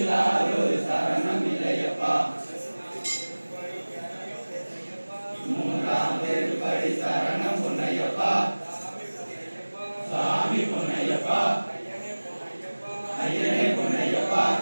சரணம் இல்லையப்பா மூன்றாம் திருப்படி சரணம் பொன்னையப்பா சாமி பொன்னையப்பா ஐயனே பொன்னையப்பா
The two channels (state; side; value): inverted; both; correlation -1.00